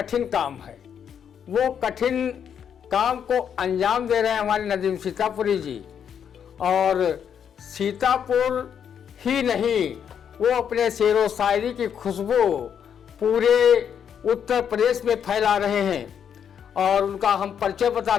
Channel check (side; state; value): right; quieter; 8.1 dB